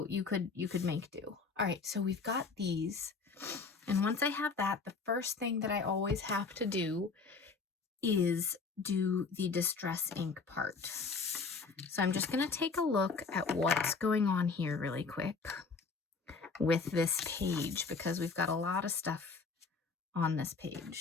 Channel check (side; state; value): right; quieter; 4.6 dB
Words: you could make do. All right, so we've got these. And once I have that, the first thing that I always have to do is do the distress ink part. So I'm just going to take a look at what's going on here really quick with this page because we've got a lot of stuff on this